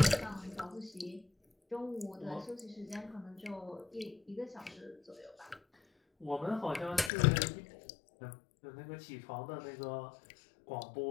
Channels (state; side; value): drops out; right; at 7.1 s